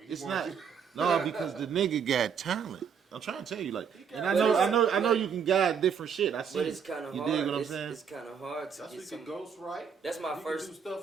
It's not. No, because the nigga got talent. I'm trying to tell you, like, and I know you can guide different shit. I see. But it's kind of hard. You dig what I'm saying? It's kind of hard to That's get we some. can ghost right. That's my you first. Can do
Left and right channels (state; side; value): quieter; left; 7.0 dB